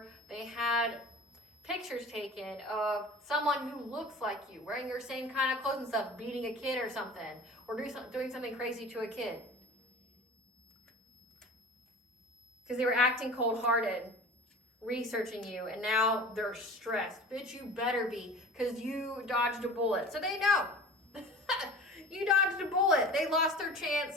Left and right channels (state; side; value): normal; both; correlation 0.39